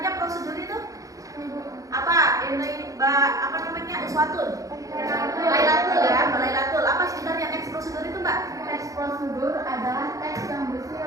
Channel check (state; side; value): late; left; 0.16 ms